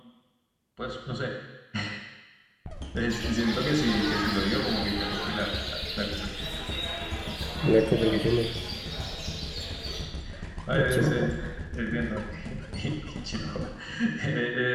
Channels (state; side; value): identical; both; correlation 1.00